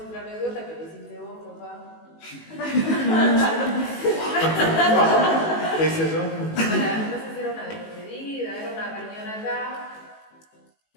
anécdota que le hiciste vos, papá. ¿Qué es eso? No sé si era una despedida, era una reunión acá,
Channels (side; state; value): right; late; 19 ms